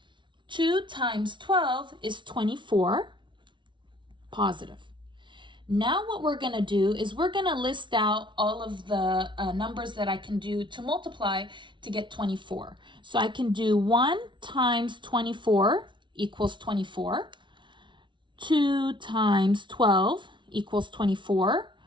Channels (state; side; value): late; left; 0.24 ms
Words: 2 times 12 is 24, positive. Now what we're going to do is we're going to list out all of the numbers that I can do to multiply to get 24. So I can do 1 times 24 equals 24. 2 times 12 equals 24.